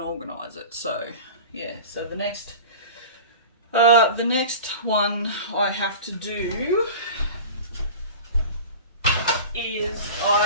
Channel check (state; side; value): inverted; both; correlation -0.36